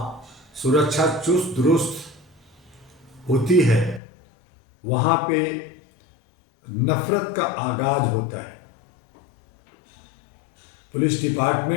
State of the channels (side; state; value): right; drops out; at 4.0 s